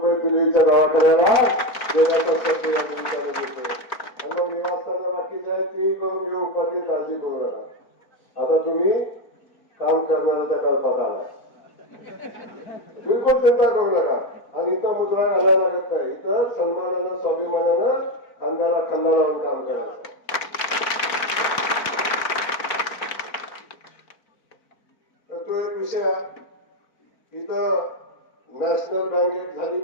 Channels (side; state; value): right; late; 4.4 ms